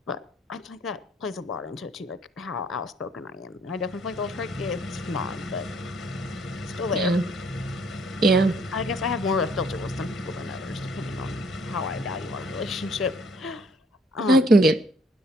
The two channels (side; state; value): both; normal; correlation 0.63